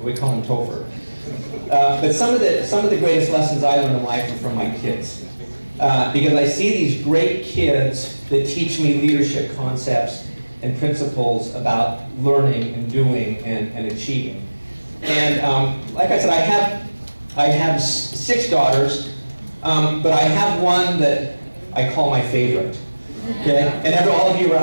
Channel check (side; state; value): both; inverted; correlation -1.00